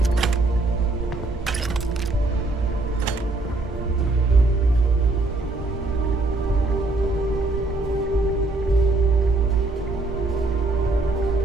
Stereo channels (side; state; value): left; quieter; 3.1 dB